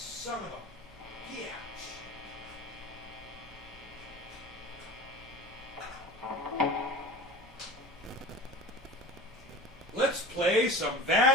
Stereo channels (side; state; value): both; normal; correlation 0.36